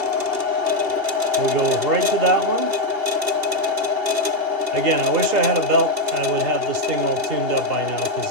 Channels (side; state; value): left; late; 2.8 ms